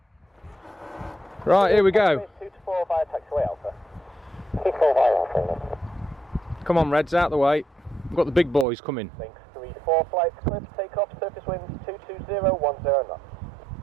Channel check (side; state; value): left; drops out; at 8.7 s